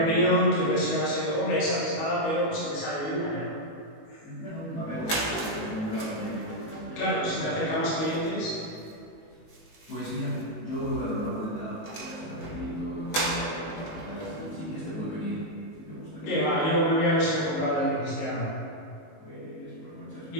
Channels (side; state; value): right; late; 19 ms